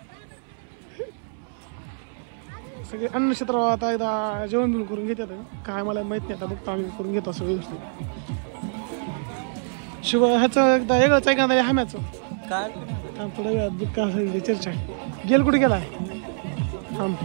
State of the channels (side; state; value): left; silent; 62 dB below the other